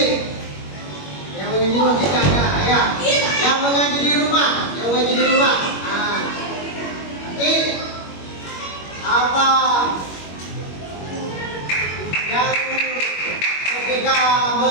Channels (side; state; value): right; late; 21 ms